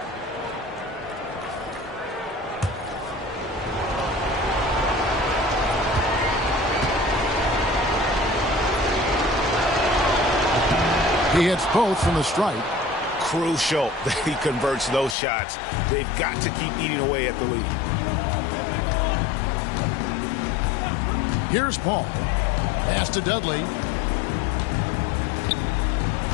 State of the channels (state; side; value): drops out; right; at 15.2 s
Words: He hits both from the stripe. Crucial that he converts those shots. They've got to keep eating away at the lead. Here's Paul. Pass to Dudley.